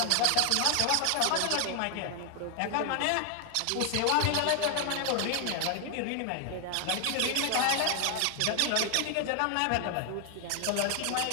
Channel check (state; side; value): different; both; correlation 0.00